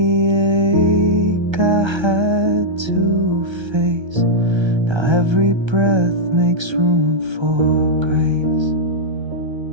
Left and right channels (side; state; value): left; late; 1.3 ms